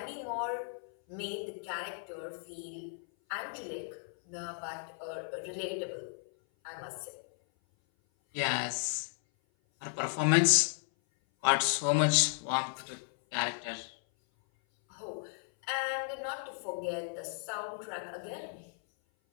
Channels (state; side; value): silent; right; 55 dB below the other